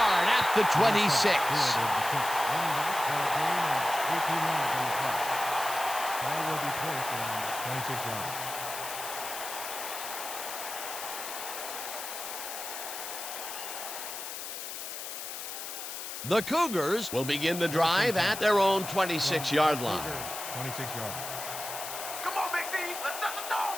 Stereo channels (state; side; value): noise; left; hiss, 7 dB below the sound